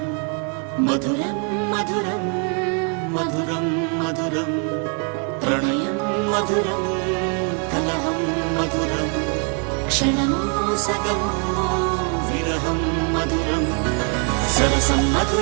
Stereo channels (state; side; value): quieter; left; 39.0 dB